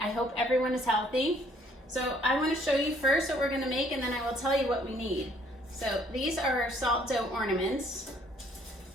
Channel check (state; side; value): normal; both; correlation 0.63